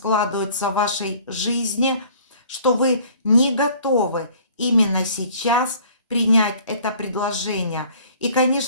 в вашей жизни, что вы не готовы именно сейчас принять это предложение. И,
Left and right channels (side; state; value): both; inverted; correlation -0.53